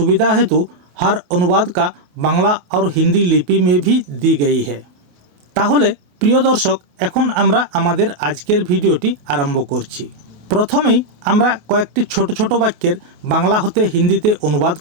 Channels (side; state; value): left; late; 28 ms